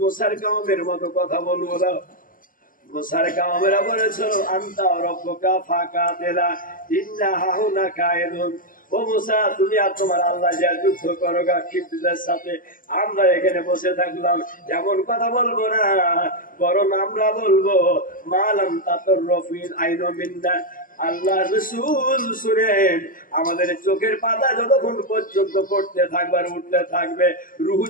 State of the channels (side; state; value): right; late; 0.40 ms